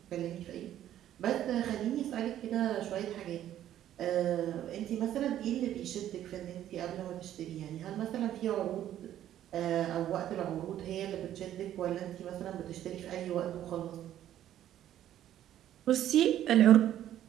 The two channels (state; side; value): quieter; left; 11.8 dB